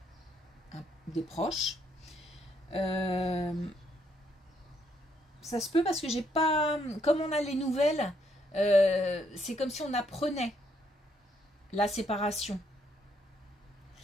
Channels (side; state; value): both; normal; correlation 0.72